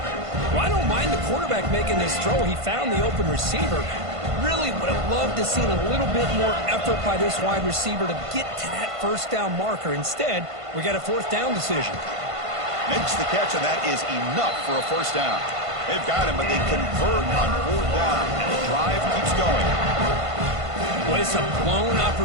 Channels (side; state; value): left; late; 1.5 ms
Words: Well, I don't mind the quarterback making this throw. He found the open receiver. Really would have loved to have seen a little bit more effort by this wide receiver to get to that first down marker. Instead, we got a fourth down decision. Makes the catch, and that is enough for a first down. They've got him, but they convert on fourth down, and the drive keeps going. Well, it's a blown